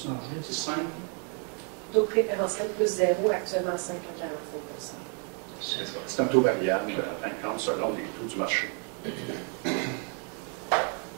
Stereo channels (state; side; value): quieter; left; 39.3 dB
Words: marché, C'est simple. taux préférentiel plus 0, actuellement 5,45 %. C'est un taux variable, en fin de compte, selon les taux du marché.